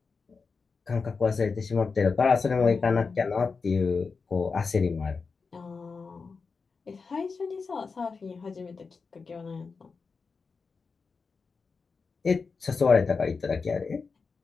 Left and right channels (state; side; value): quieter; right; 4.8 dB